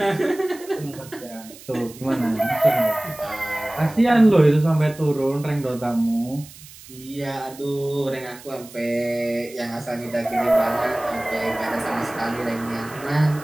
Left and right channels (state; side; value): noise; right; hiss, 19 dB below the sound